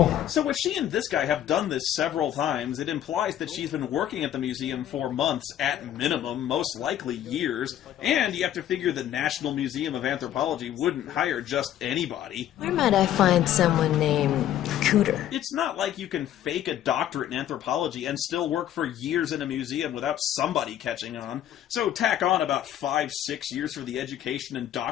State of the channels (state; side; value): quieter; right; 11.4 dB